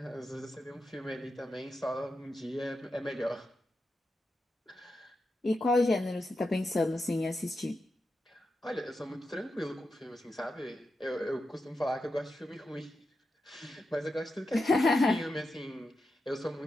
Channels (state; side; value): normal; both; correlation 0.88